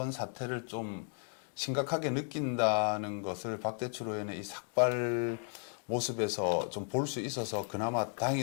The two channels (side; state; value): right; silent; 55 dB below the other